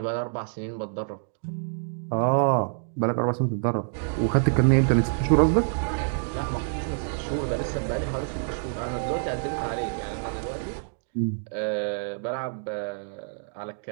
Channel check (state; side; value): silent; left; digital silence